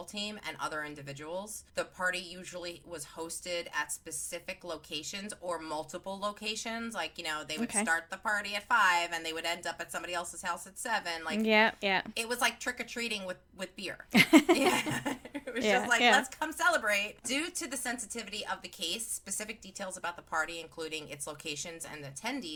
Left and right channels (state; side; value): identical; both; correlation 1.00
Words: team and other individuals. The party usually was hosted at specific locations or multiple locations. Like, they would start the party at 5 and they would end up at somebody else's house at 7. Like, it was like trick-or-treating with beer. It was just like, let's come celebrate. Due to the sensitivity of the case, specific details about the party, including its locations and